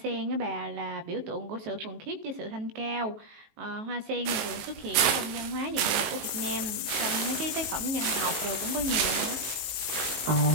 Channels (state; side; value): late; left; 19 ms